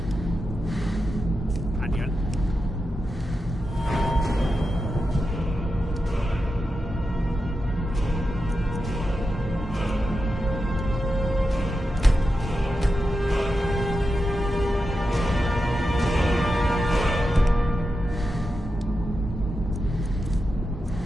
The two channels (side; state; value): both; normal; correlation 0.89